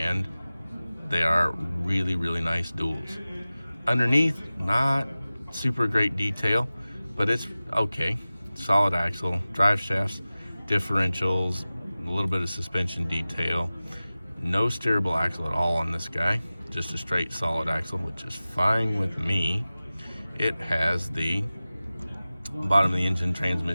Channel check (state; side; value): inverted; both; correlation -0.97